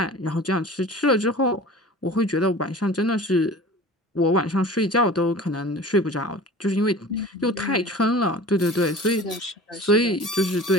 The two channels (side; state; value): both; normal; correlation 0.40